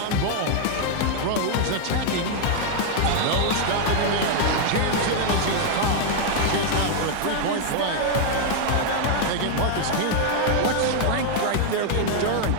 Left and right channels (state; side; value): different; both; correlation 0.00